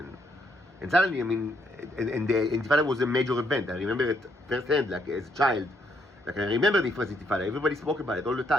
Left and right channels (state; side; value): normal; both; correlation 0.73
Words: And suddenly, I mean, and the Intifada was a major event. I remember it firsthand, like, as a child. Like, I remember the first Intifada. Everybody spoke about it all the